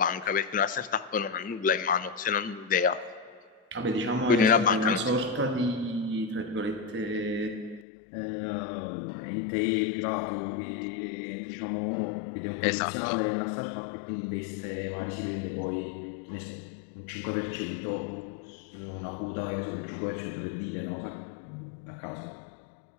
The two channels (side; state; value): right; drops out; at 7.9 s